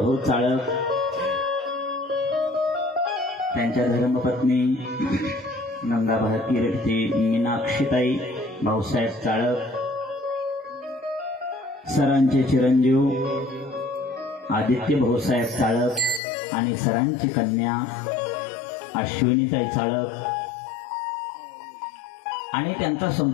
चाळक, त्यांच्या धर्मपत्नी गंगाभारती मीनाक्षीताई भाऊसाहेब चाळक, सरांचे चिरंजीव आदित्य भाऊसाहेब चाळक आणि सरांची कन्या अश्विनीताई चाळक आणि त्यांचा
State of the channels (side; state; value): right; drops out; at 16.2 s